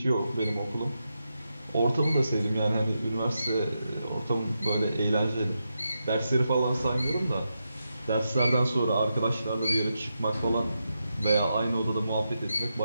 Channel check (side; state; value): both; inverted; correlation -0.86